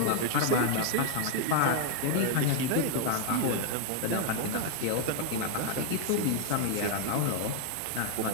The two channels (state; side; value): different; both; correlation 0.00